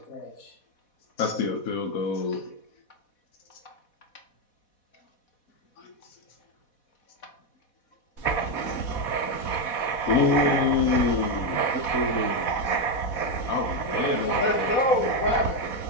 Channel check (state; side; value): late; right; 4.1 ms